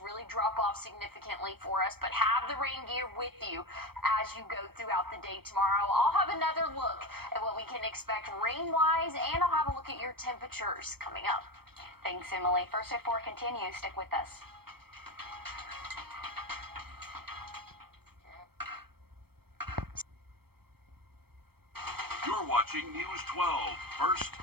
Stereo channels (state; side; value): late; left; 0.96 ms